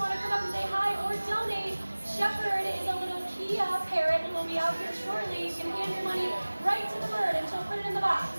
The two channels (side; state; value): both; inverted; correlation -1.00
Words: to come up and say hi or donate, Shepherd is a little Kia parrot and will be out here shortly. You can hand your money right to the bird and she'll put it in the box.